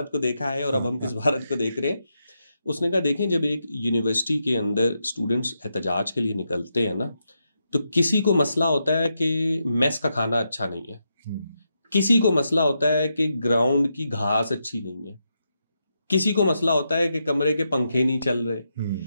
को देखा है और अब हम किस भारत को देख रहे हैं। उसने कहा देखें, जब एक यूनिवर्सिटी के अंदर स्टूडेंट्स एहतजाज के लिए निकलते हैं ना, तो किसी को मसला होता है कि मेस का खाना अच्छा नहीं है, किसी को मसला होता है कि ग्राउंड की घास अच्छी नहीं है, किसी को मसला होता है कि कमरे के पंखे नहीं चल रहे।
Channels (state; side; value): inverted; both; correlation -0.84